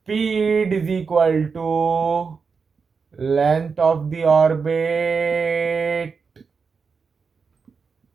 is equal to length of the orbit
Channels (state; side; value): quieter; left; 5.3 dB